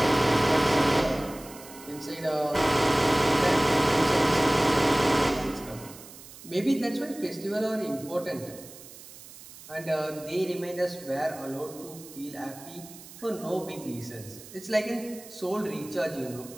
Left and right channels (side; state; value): right; noise; hiss, 18 dB below the sound